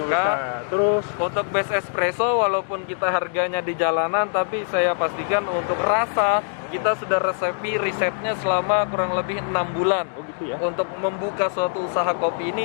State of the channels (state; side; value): silent; right; digital silence